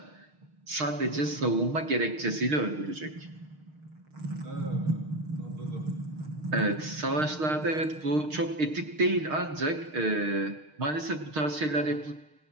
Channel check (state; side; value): late; left; 6.5 ms